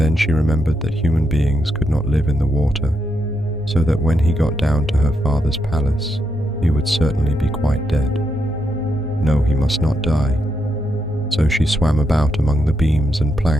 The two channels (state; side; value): normal; both; correlation 0.82